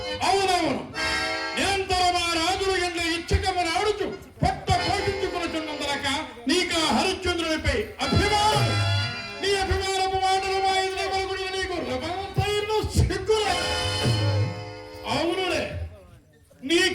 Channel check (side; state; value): both; identical; correlation 1.00